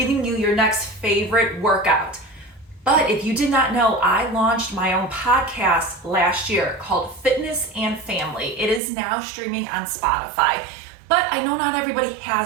you your next favorite workout. But if you did not know, I launched my own podcast last year called Fitness and Family. It is now streaming on Spotify, but I know not everybody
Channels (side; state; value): left; drops out; at 8.8 s